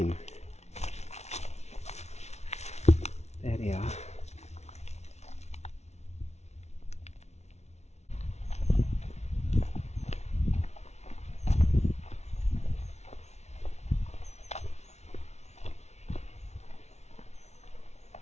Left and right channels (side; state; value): right; late; 0.32 ms